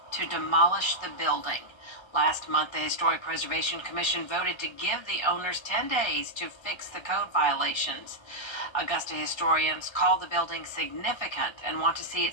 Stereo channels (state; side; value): late; right; 1.3 ms